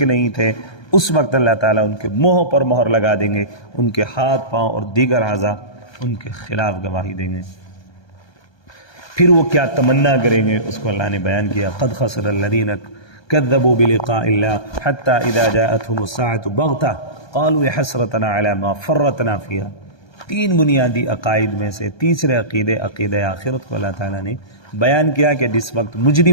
نہیں تھے۔ اس وقت اللہ تعالیٰ ان کے منہوں پر مہر لگا دیں گے، ان کے ہاتھ پاؤں اور دیگر اعضاء ان کے خلاف گواہی دیں گے۔ پھر وہ کیا تمنا کریں گے اس کو اللہ نے بیان کیا، قد خسر الذین كذبوا بلقاء الله حتى إذا جاءتهم الساعة بغتة قالوا يا حسرتنا على ما فرطنا فيها۔ تین بنیادی عقائد میں سے تیسرے عقیدہ آخرت کو اللہ تعالیٰ نے بیان کیا کہ جس وقت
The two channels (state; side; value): late; right; 1.2 ms